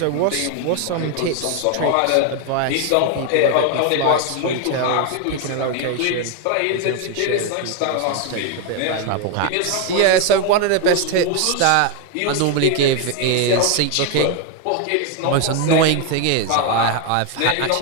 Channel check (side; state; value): both; different; correlation 0.01